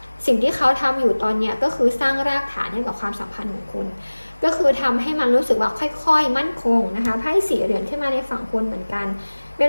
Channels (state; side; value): inverted; both; correlation -1.00